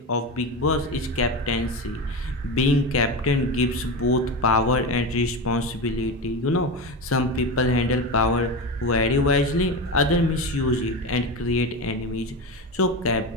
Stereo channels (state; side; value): normal; both; correlation 0.21